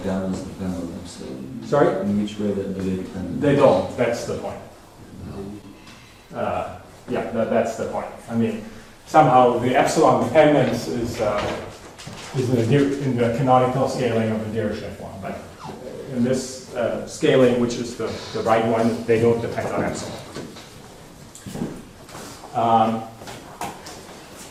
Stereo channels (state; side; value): identical; both; correlation 1.00